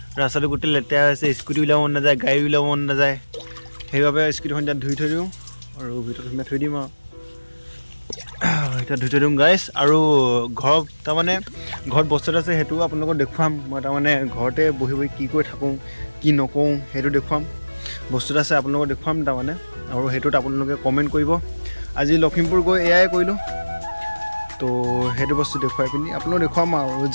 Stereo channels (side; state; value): both; inverted; correlation -1.00